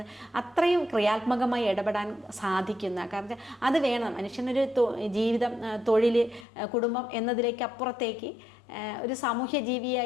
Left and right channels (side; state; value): right; drops out; at 6.5 s